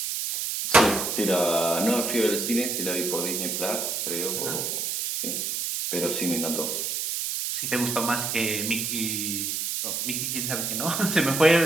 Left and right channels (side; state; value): right; noise; hiss, 1 dB below the sound